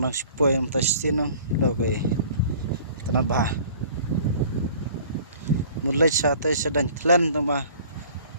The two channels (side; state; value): both; inverted; correlation -0.49